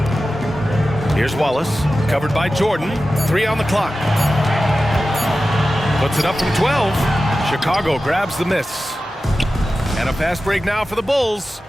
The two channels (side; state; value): both; normal; correlation 0.94